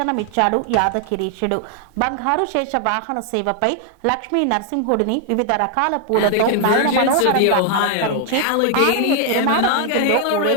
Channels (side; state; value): both; different; correlation 0.00